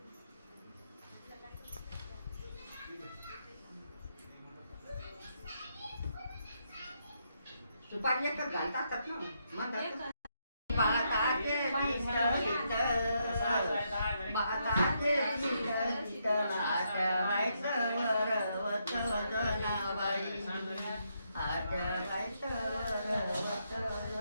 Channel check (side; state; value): both; inverted; correlation -0.78